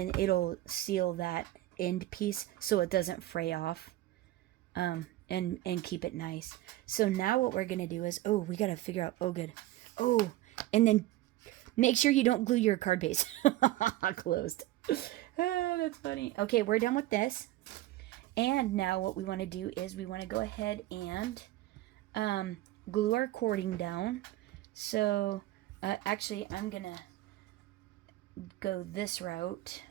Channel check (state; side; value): quieter; left; 15.9 dB